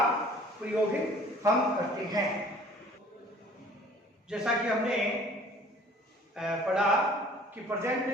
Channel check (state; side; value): normal; both; correlation 0.51